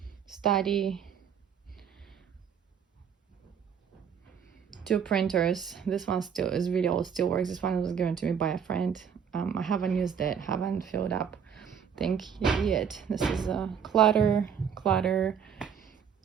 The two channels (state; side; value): quieter; left; 7.6 dB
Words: study. 2 printers. This one still is really old, still works. This one was given to me by a friend. I haven't used it, haven't filled up thing yet. This is a clutter,